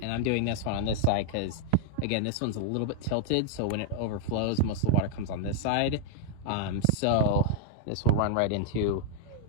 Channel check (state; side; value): different; both; correlation 0.00